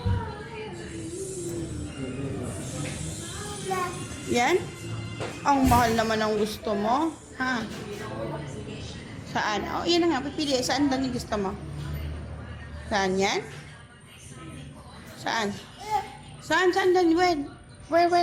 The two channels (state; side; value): identical; both; correlation 1.00